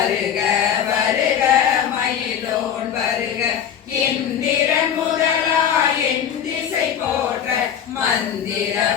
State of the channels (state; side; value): quieter; right; 8.9 dB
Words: வருக மயிலோன் வருக இந்திரன் முதலா என் திசை போற்ற மந்திர